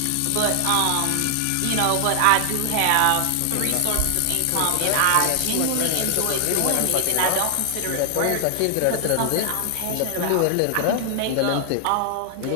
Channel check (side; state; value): both; different; correlation 0.00